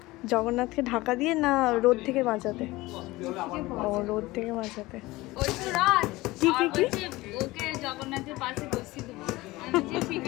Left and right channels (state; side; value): quieter; right; 19.8 dB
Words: জগন্নাথকে ঢাকা দিয়ে না রোদ থেকে বাঁচাতে? ও, রোদ থেকে বাঁচাতে। ওই তো রাত কি কি কি? ওকে জগন্নাথের পাশে বসিয়ে দেবো। আমি যে ঠিক